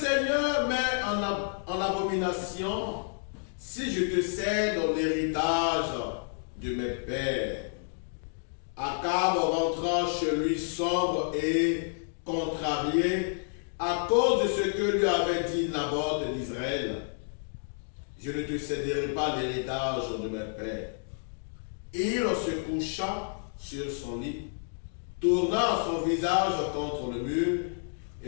met en abomination si je te cède l'héritage de mes pères. Akab rentra chez lui sombre et contrarié à cause de ce que lui avait dit Naboth d'Israël. Je ne te céderai pas l'héritage de mes pères. Il se coucha sur son lit, tourna son visage contre le mur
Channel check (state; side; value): silent; right; digital silence